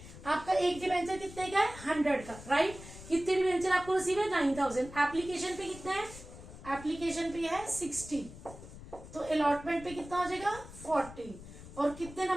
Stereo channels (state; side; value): noise; left; rumble, 15 dB below the sound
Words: आपका एक डिबेंचर कितने का है 100 का. राइट, कितने डिबेंचर आपको रिसीव है 9,000. एप्लीकेशन पे कितना है, एप्लीकेशन पे है 60. तो अलॉटमेंट पे कितना हो जाएगा 40. और कितने